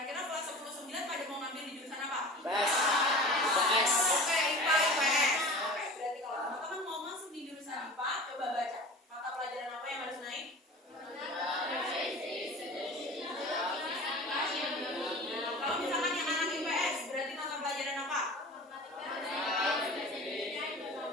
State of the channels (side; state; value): both; normal; correlation 0.37